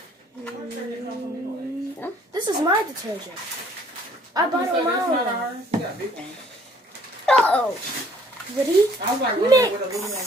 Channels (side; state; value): both; normal; correlation 0.59